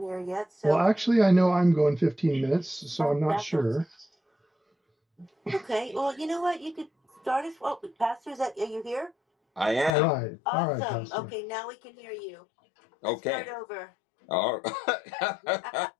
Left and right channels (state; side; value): drops out; right; at 9.9 s